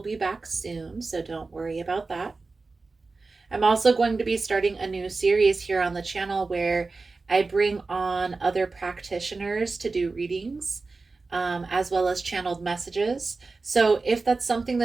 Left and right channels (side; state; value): left; quieter; 3.9 dB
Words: be back soon, so don't worry about that. I'm also going to be starting a new series here on the channel where I bring on other practitioners to do readings, as well as channeled messages. So if that's something